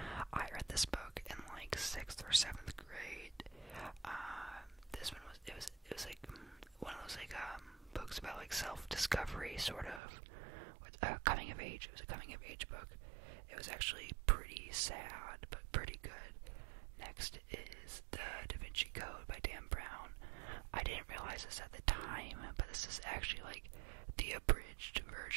I read this book in like 6th or 7th grade. This one was it was like one of those like books about like self-discovery, sort of, with coming of age. It was a coming of age book. It was actually pretty sad, but pretty good. Next is The Da Vinci Code by Dan Brown. I didn't realize this at the time, but this is actually like the abridged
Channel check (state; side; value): drops out; left; at 10.0 s